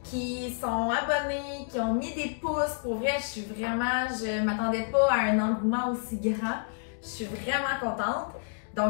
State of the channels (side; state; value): right; silent; digital silence